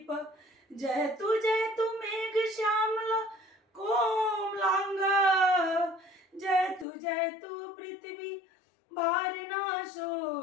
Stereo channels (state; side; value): drops out; right; at 6.9 s